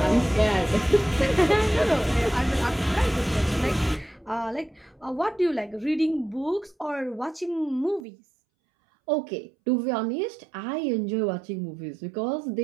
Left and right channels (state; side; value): drops out; left; at 8.1 s